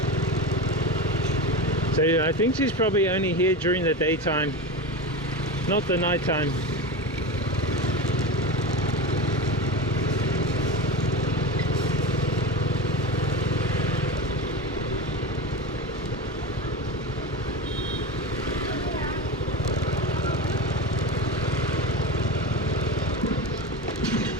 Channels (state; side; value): normal; both; correlation 0.24